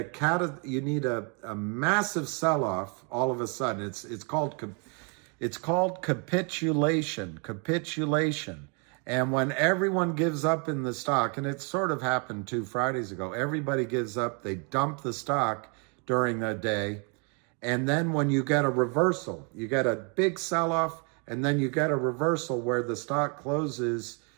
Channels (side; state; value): left; quieter; 35.8 dB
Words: massive sell-off all of a sudden. It's called capitulation. And when everyone gives up in the stock, and it sort of happened 2 Fridays ago, everybody gives up, they dump the stock during the day. And then when you get a reversal, you get a big sell-off, and then you get a reversal where the stock closes